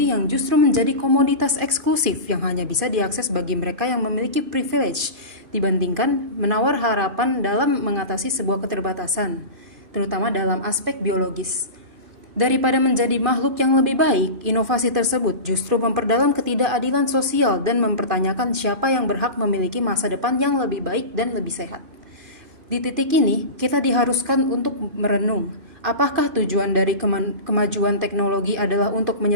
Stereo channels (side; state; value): left; late; 2.4 ms